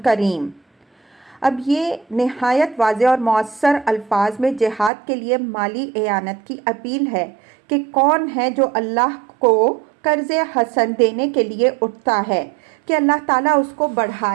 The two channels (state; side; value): drops out; left; at 4.9 s